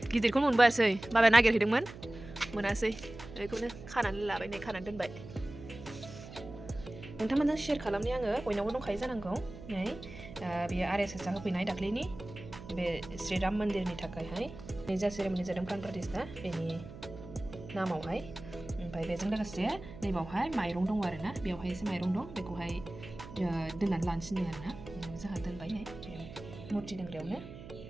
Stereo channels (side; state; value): right; noise; hum, 14 dB below the sound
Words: गिदिरखौनो मोनबोआसै बाबाया नागिरहैदोंमोन मोनासै बेखौनो खानानै लाबाय नै खानानै दोनबाय नोंथांमोनजों शेयार खालामनि आङो बयनावबो दंखायो जानांगौ नै बेयो RSSआ होफैनाय दाख्लैनि बे श्रीराम मन्दिरनि थाखायहाय नै जा सेरेमनि जादों प्राण प्रतिष्ठा बेनि नामावहाय ओमफ्राय बेजों लोगोसे नैबावहाय माइरं दङ आरोना बेवहाय एसे माइरं दं बेखौहाय दोननानै लानोसै आरोना जोंहा दोनबाय नै बे मुर्ति दोनग्रायावनो